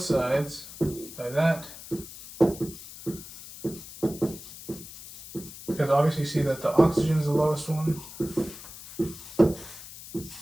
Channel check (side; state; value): left; noise; hiss, 15 dB below the sound